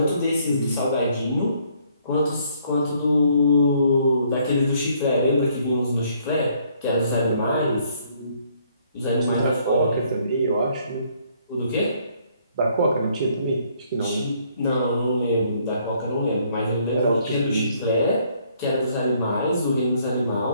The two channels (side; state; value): both; inverted; correlation -0.66